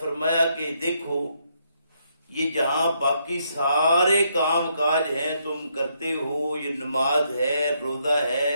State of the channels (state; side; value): inverted; both; correlation -0.75